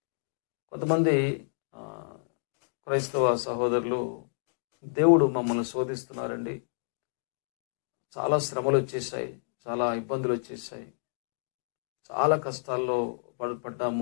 కొంతమంది క్రైస్తవ సహోదరులు, దేవుడు మమ్మల్ని శోధిస్తున్నారండి, చాలా శ్రమలు వచ్చేసాయి, చాలా ఇబ్బందులు వచ్చేసాయి, చాలా కష్టాల్లో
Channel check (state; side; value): silent; right; digital silence